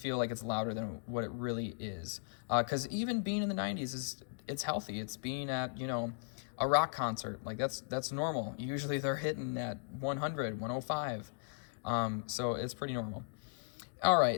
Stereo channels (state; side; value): silent; right; digital silence